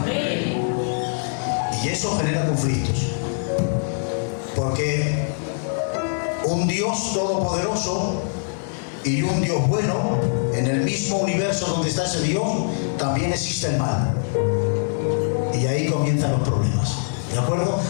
Y eso genera conflictos. Porque un Dios todopoderoso y un Dios bueno, en el mismo universo donde está ese Dios, también existe el mal. Y ahí comienzan los problemas. ¿De acuerdo?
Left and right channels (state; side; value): silent; right; digital silence